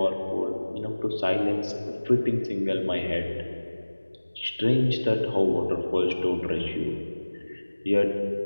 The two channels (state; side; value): inverted; both; correlation -1.00